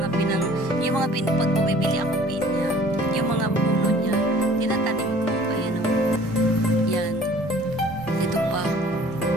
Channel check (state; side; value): normal; both; correlation 0.51